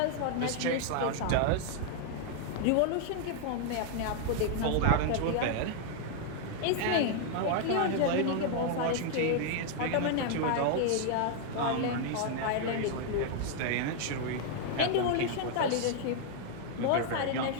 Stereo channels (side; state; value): both; different; correlation 0.00